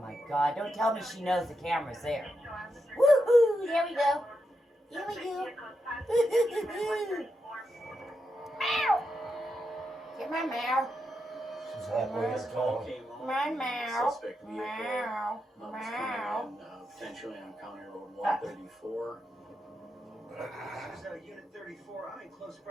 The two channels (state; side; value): normal; both; correlation 0.85